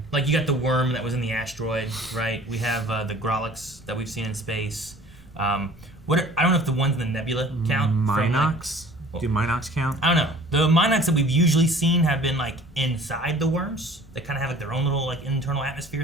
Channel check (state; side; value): normal; both; correlation 0.48